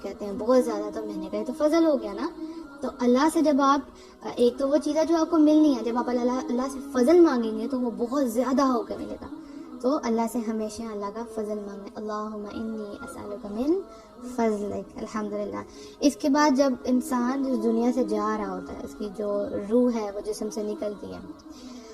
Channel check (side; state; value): both; identical; correlation 1.00